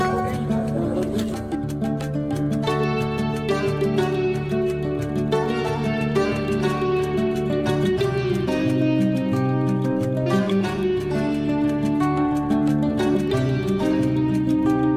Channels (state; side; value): identical; both; correlation 1.00